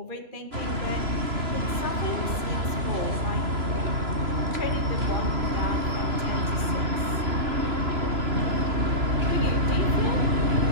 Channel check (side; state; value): left; late; 3.0 ms